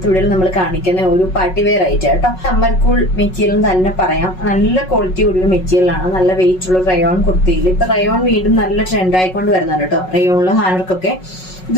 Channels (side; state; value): right; late; 5.4 ms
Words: വീഡിയോയിൽ നമ്മൾ കാണിക്കുന്ന ഒരു പാർട്ടി വെയർ ഐറ്റം കേട്ടോ. സമ്മർ കൂൾ മെറ്റീരിയൽ തന്നെ പറയാം. നല്ല ക്വാളിറ്റി കൂടിയ മെറ്റീരിയലാണ്. നല്ല വെയിറ്റ് ഉള്ള റയോൺ കുർത്തിയിൽ ഇപ്പൊ റയോൺ വീണ്ടും നല്ല ട്രെൻഡ് ആയിക്കൊണ്ട് വരുന്നുണ്ട് കേട്ടോ. റയോണില് ഹാൻഡ്വർക്കൊക്കെ